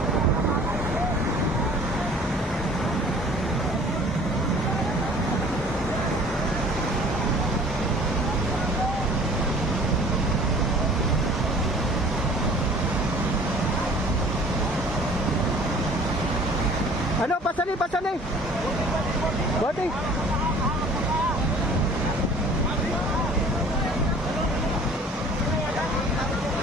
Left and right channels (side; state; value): both; normal; correlation 0.49